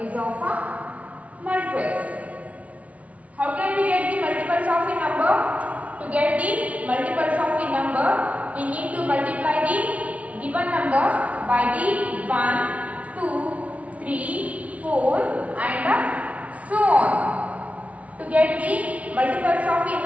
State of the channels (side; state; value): left; late; 0.067 ms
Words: of multiples. How can we get the multiples of a number? To get the multiples of a number, we need to multiply the given number by the 1, 2, 3, 4 and so on. To get the multiples of a